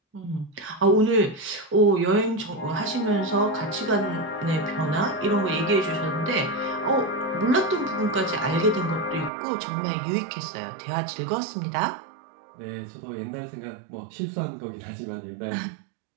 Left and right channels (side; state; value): left; drops out; at 9.3 s